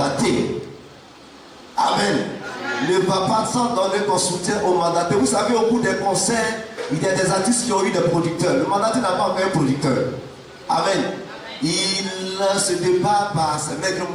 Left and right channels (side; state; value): both; identical; correlation 1.00